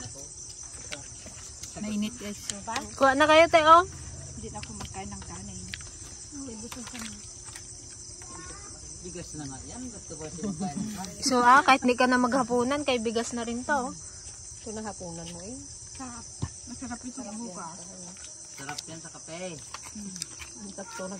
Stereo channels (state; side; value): identical; both; correlation 1.00